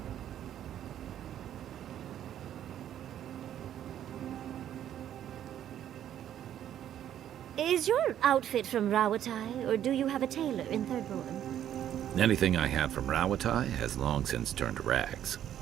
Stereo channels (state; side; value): quieter; left; 10.8 dB